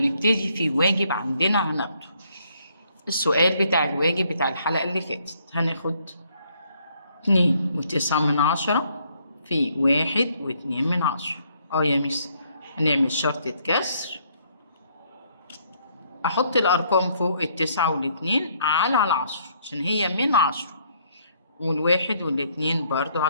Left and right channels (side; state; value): both; inverted; correlation -0.68